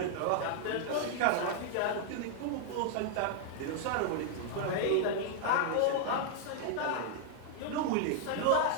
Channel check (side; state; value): both; different; correlation -0.01